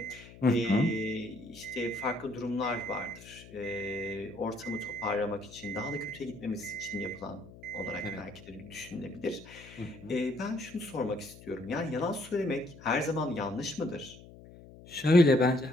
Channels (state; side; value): noise; left; hum, 18 dB below the sound